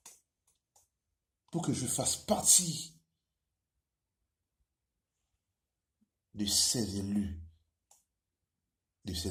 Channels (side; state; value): both; identical; correlation 1.00